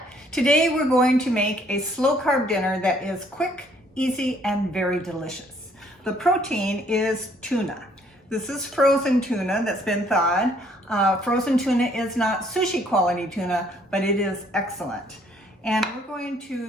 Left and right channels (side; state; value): both; normal; correlation 0.63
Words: today we're going to make a slow carb dinner that is quick, easy, and very delicious. The protein is tuna. This is frozen tuna that's been thawed. Frozen tuna is not sushi quality tuna, but it is excellent. And we're going